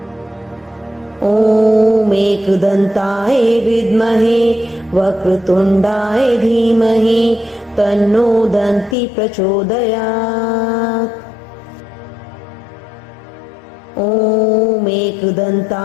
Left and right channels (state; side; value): drops out; right; at 9.0 s